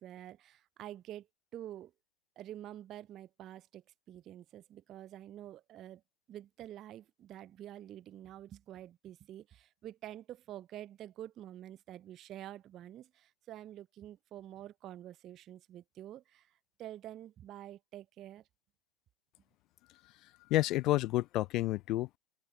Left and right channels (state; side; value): quieter; right; 7.6 dB